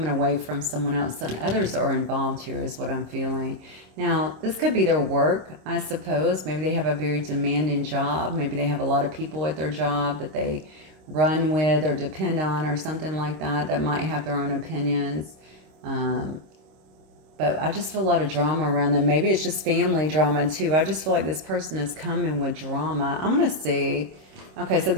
away from someone else and others are involved here is what I'm feeling. Now, this could be their work, I suppose. Maybe they have a very demanding job. Maybe they have a lot of people at their job that they run with or depend on or something like that, that might have their own opinions. But I just feel a lot of drama around them. Maybe it's just family drama too. I just feel like this person is coming with drama. I'm going to see. Okay, so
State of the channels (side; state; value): left; late; 26 ms